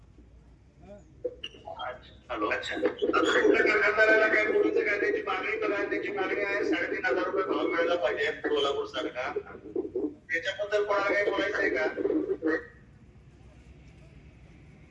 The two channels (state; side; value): identical; both; correlation 1.00